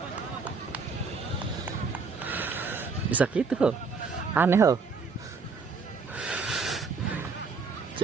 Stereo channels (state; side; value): quieter; left; 4.8 dB